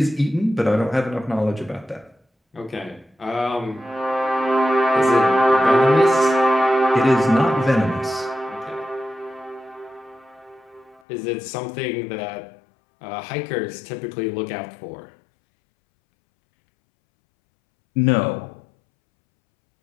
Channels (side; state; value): right; drops out; at 11.0 s